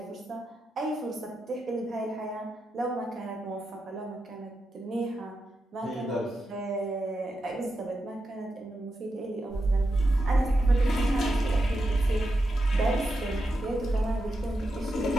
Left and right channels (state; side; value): normal; both; correlation 0.87